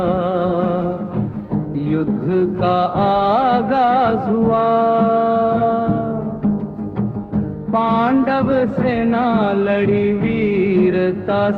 युद्ध का आगाज हुआ, पांडव सेना लड़ी वीरता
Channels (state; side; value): identical; both; correlation 1.00